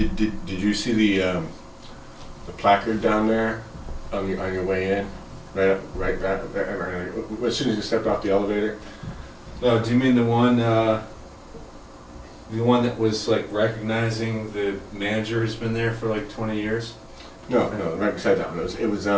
Did you see the placard down there on your way in? Right, as soon as you stepped off the elevator. Oh, do you mean the one that was like recognizing the manager who's been there for like 20 years? No, right beside that one. It was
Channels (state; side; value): identical; both; correlation 1.00